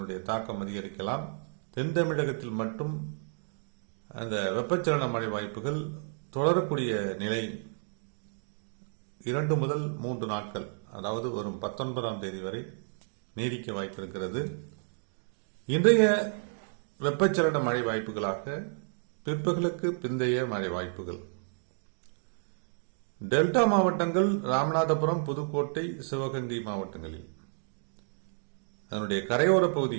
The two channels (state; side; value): silent; left; digital silence